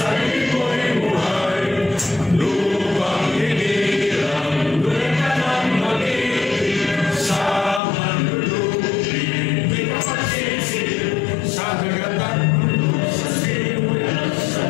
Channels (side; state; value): right; drops out; at 7.8 s